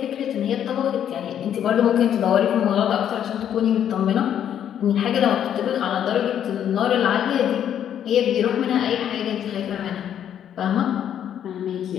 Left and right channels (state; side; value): quieter; right; 9.7 dB